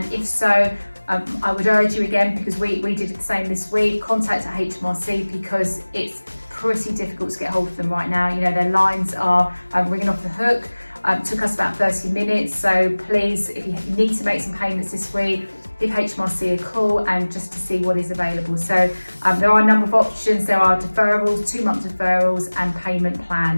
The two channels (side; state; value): both; inverted; correlation -1.00